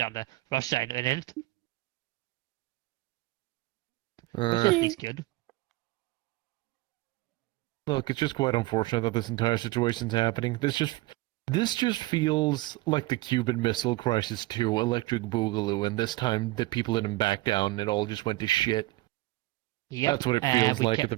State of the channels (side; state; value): left; quieter; 19.7 dB